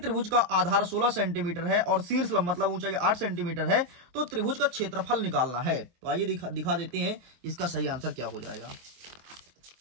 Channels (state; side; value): late; left; 23 ms